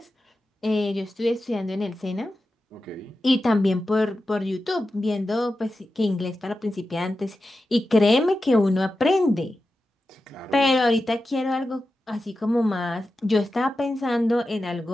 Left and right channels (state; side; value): normal; both; correlation 0.92